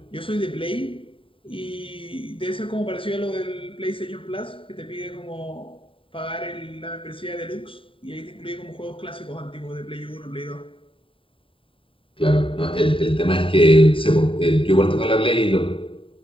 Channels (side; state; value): right; late; 0.25 ms